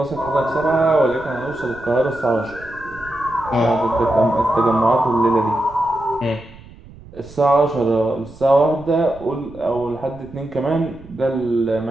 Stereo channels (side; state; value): right; noise; rumble, 20 dB below the sound